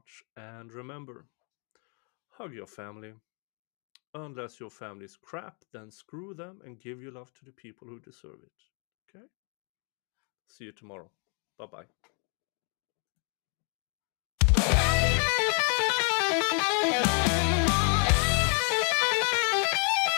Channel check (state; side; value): quieter; right; 38.5 dB